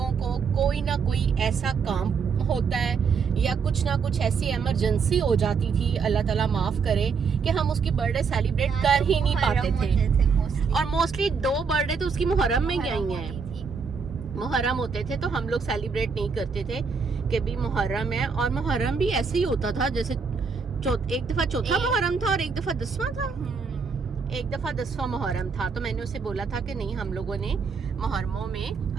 को कोई ना कोई ऐसा काम होता है या कुछ ना कुछ ऐसी इमरजेंसी हो जाती थी, अल्लाह ताला माफ करे, कि हम उसकी बर्थडे सेलिब्रेट कर ही नहीं पाते थे। और मोस्टली 2 बर्थडे तो उसकी मुहर्रम में गई हैं, मुहर्रम होते थे तो हम लोग सेलिब्रेट नहीं करते थे कि भी मुहर्रम है। और मुहर्रम भी ऐसे ही होता था जैसे एक दफा चौथा मुहर्रम था और एक दफा 10वां था। एक दफा 10वां मुहर्रम था, तो मैंने उसे बोला था कि नहीं, हम लोगों ने मुहर्रमों में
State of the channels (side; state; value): left; quieter; 5.5 dB